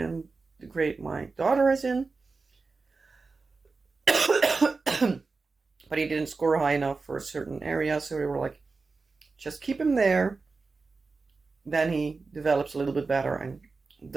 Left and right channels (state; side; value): quieter; left; 4.1 dB